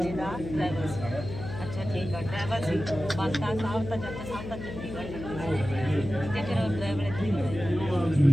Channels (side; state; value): left; noise; hum, 9 dB below the sound